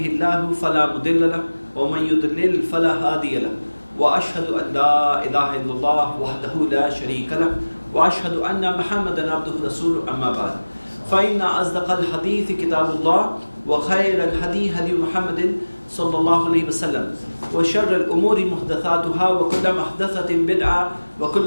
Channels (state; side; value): inverted; both; correlation -1.00